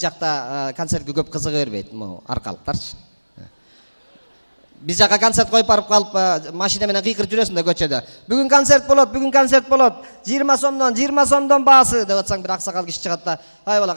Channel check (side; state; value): both; inverted; correlation -1.00